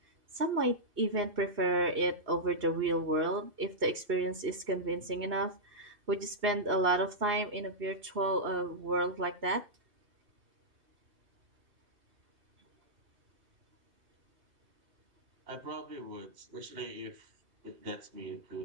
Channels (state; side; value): late; left; 2.6 ms